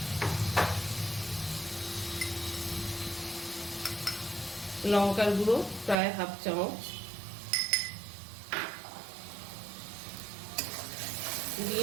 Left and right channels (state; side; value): drops out; left; at 6.0 s